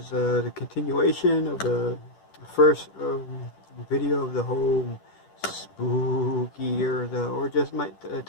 the continuation of the first video of the whole spooky or just my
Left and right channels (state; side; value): late; right; 10 ms